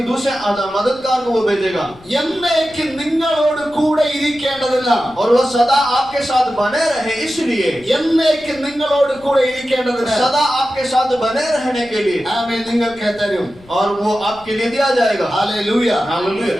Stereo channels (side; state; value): left; noise; rumble, 24 dB below the sound